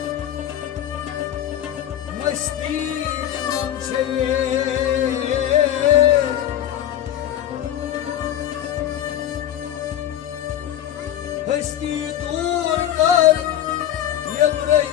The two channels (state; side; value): quieter; right; 11.2 dB